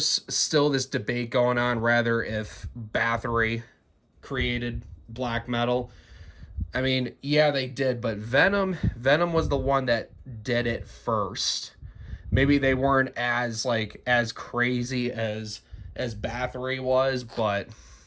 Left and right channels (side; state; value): both; identical; correlation 1.00